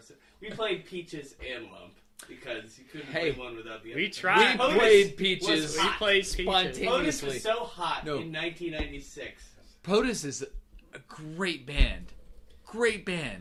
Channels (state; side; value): identical; both; correlation 1.00